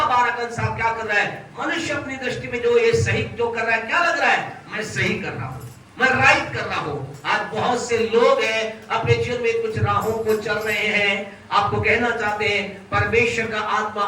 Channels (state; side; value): identical; both; correlation 1.00